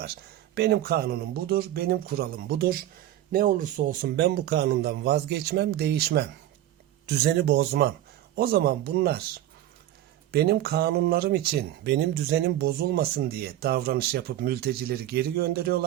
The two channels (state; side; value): quieter; left; 13.2 dB